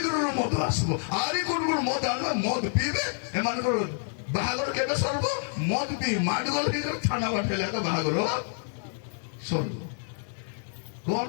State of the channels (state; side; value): silent; right; digital silence